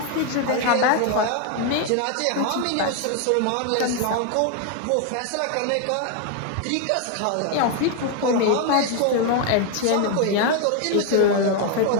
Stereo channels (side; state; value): both; different; correlation 0.01